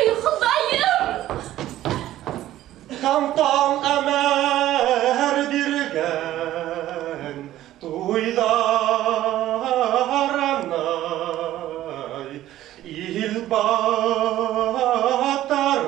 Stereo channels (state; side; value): quieter; left; 13.9 dB